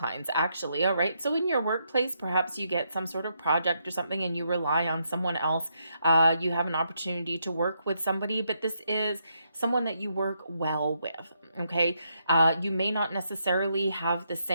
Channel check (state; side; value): inverted; both; correlation -0.78